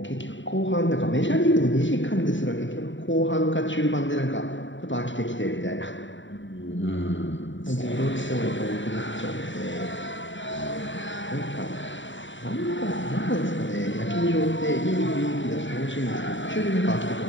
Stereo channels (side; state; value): right; late; 0.55 ms